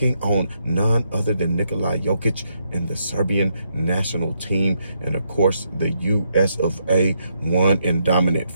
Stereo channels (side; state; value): both; inverted; correlation -0.78